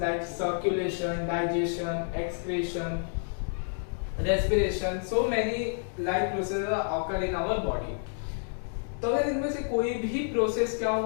circulation, digestion, excretion, respiration. So many life processes occur in our body. तो अगर इनमें से कोई भी प्रोसेस क्या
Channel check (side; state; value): right; silent; digital silence